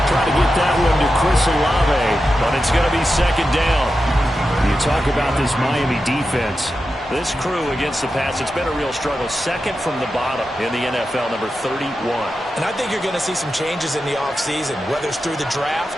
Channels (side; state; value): both; normal; correlation 0.90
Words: Trying to get that one to Chris Olave, but it's going to be 2nd down. You talk about this Miami defense. This crew against the pass, it's been a real struggle. 2nd from the bottom in the NFL, number 31. And I think you're going to see some changes in the offseason, whether it's through the